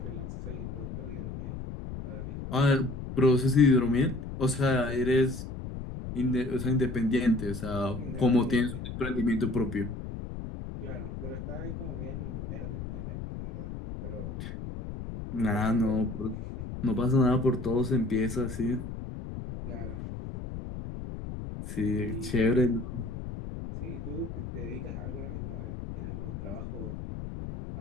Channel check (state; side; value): noise; left; rumble, 8 dB below the sound